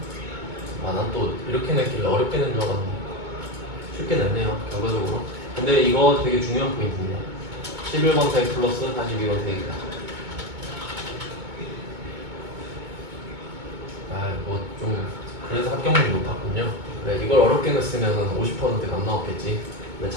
아, 난 또 이렇게 냈길래 어렵게 낸 줄 알았는데 쉽게 냈네요, 결과적으로. 근데 이거 되게 중요한 포인트입니다. 11번 세액 플러스 42번 세액이다. 아, 뭐 좀 그래서 합격률이 높았군요. 그래, 이걸 어렵게 냈으면 50%가 안 나왔겠지. 근데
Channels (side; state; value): left; late; 2.2 ms